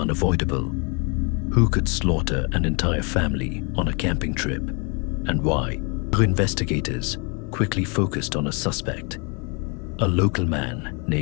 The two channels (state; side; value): quieter; right; 33.8 dB